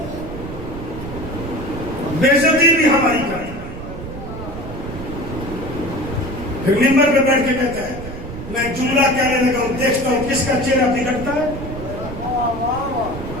بے عزتی بھی ہماری کرتا ہے. پھر ممبر پہ بیٹھ کے کہتا ہے میں جملہ کہنے لگا ہوں، دیکھتا ہوں کس کا چہرہ بگڑتا ہے،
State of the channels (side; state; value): right; noise; rumble, 10 dB below the sound